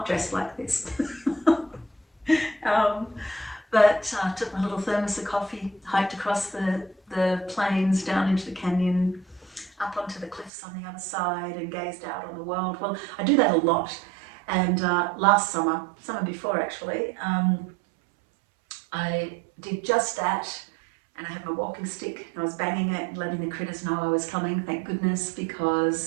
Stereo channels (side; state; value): left; drops out; at 10.5 s